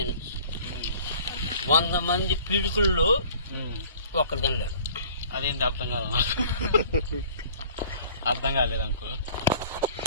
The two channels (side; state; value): both; inverted; correlation -0.50